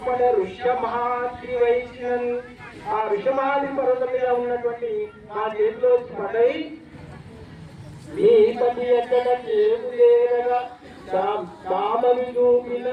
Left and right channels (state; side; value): identical; both; correlation 1.00